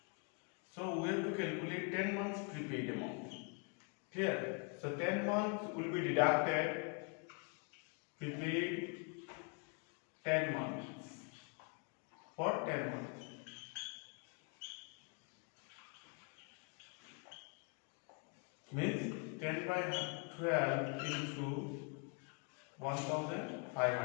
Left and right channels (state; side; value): quieter; right; 36.8 dB